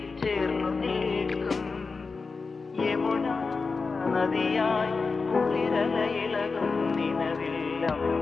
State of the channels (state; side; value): quieter; right; 4.4 dB